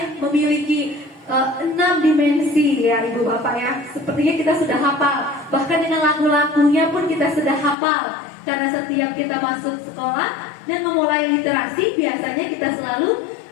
memiliki 6 dimensi ya Ibu Bapak ya. Sepertinya kita sudah hafal. Bahkan dengan lagu-lagunya pun kita sudah hafal. Karena setiap kita masuk sekolah dan memulai literasi, biasanya kita selalu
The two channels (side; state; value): right; drops out; at 7.8 s